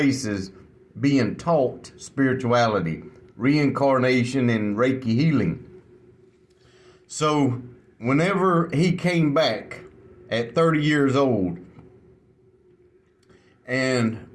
being taught spirituality, reincarnation, and Reiki healing. So whenever he came back at 30 years old, and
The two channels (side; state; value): both; identical; correlation 1.00